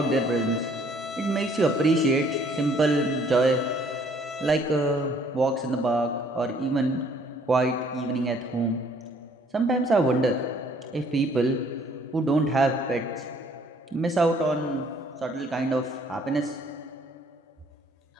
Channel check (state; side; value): normal; both; correlation 0.61